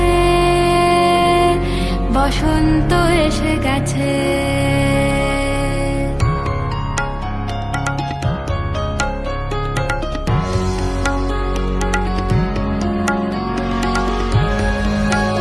বসন্ত এসে গেছে।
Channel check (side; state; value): both; identical; correlation 1.00